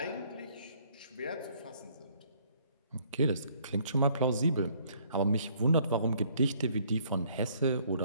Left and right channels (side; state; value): both; inverted; correlation -0.63